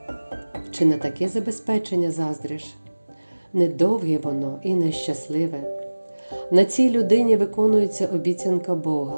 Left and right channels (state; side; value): inverted; both; correlation -1.00